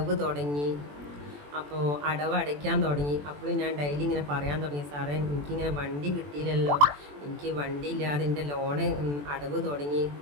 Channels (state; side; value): late; left; 21 ms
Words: തുടങ്ങി. അപ്പോൾ അടവ് അടയ്ക്കാൻ തുടങ്ങി. അപ്പോൾ ഞാൻ ഡെയിലി ഇങ്ങനെ പറയാൻ തുടങ്ങി, സാറേ എനിക്കിങ്ങനെ വണ്ടി കിട്ടിയില്ലല്ലോ, എനിക്ക് വണ്ടി ഇല്ലാതെ എൻ്റെ ലോണ് അടവ് തുടങ്ങി.